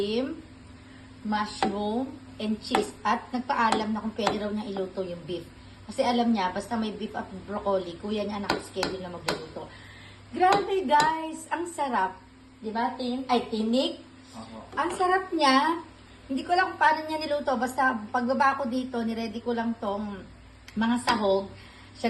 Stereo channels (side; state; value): both; identical; correlation 1.00